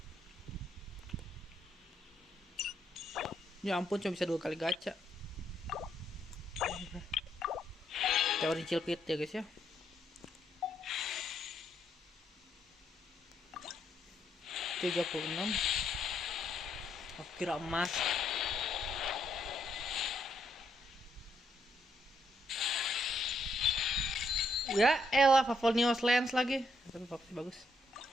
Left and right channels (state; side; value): normal; both; correlation 0.75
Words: Ya ampun, cuma bisa 2 kali gacha. Teori cilpit ya guys ya. $36. Aku kira emas. Ya elah, Favonius Lens lagi. Tapi bagus.